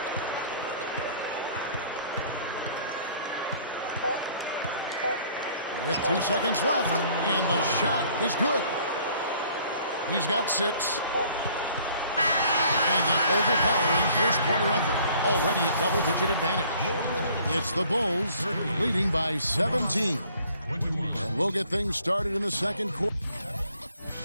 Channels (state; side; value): inverted; both; correlation -0.57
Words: With 2 seconds left, and the shot is good. He's got 6. And an overpowering first quarter effort. Already a double-digit advantage. It's the Bulls leading by 17. And we'll get things started in the second quarter.